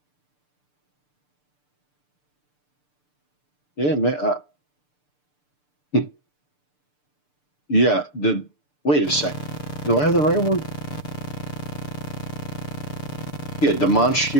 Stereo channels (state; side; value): late; right; 6.8 ms